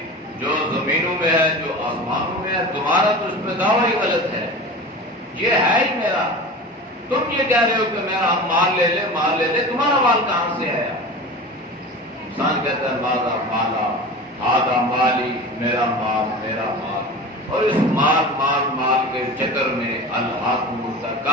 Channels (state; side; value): normal; both; correlation 0.33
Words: جو زمینوں میں ہے جو آسمانوں میں ہے تمہارا تو اس میں دعویٰ ہی غلط ہے. یہ ہے ہی میرا. تم یہ کہہ رہے ہو کہ میرا ہم مال لے لے، تمہارا مال کہاں سے آیا؟ انسان کہتا ہے مالا مالا آدھا مالی، میرا مال میرا مال، اور اس مال مال مال کے چکر میں الہاکم